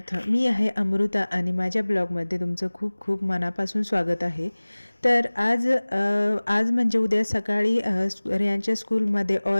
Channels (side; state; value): both; inverted; correlation -1.00